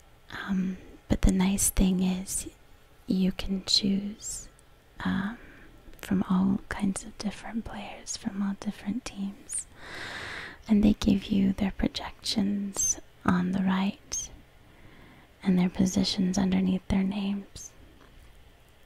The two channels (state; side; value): identical; both; correlation 1.00